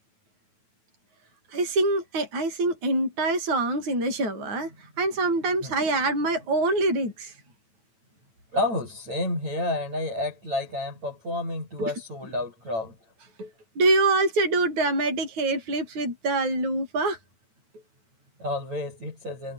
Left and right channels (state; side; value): late; left; 9.1 ms